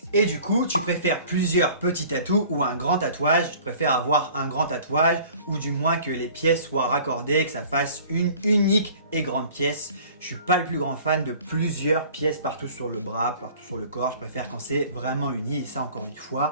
Et du coup, tu préfères plusieurs petits tatous ou un grand tatouage? Je préfère avoir un grand tatouage, ou du moins que les pièces soient raccordées, que ça fasse une unique et grande pièce. Je suis pas le plus grand fan de plusieurs pièces partout sur le bras, partout sur le corps. Je préfère quand c'est vraiment uni, et ça encore une fois,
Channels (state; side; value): inverted; both; correlation -0.48